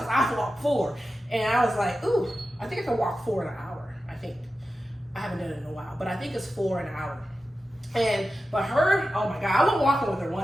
I walked 4. And I was like, ooh, I think I can walk 4 in an hour, I think. I haven't done it in a while, but I think it's 4 in an hour. But her, oh my God, I went walking with her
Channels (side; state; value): both; normal; correlation 0.93